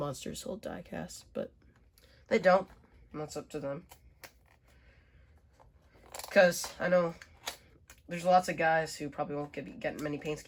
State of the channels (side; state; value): both; identical; correlation 1.00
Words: sold diecasts, but they don't. And that's up to them. Because I know there's lots of guys who probably won't be getting many paint